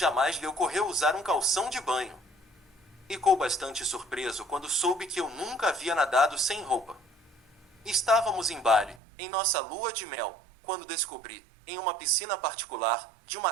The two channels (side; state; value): left; drops out; at 9.0 s